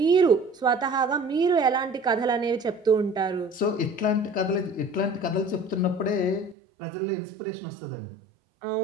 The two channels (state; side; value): drops out; left; at 6.6 s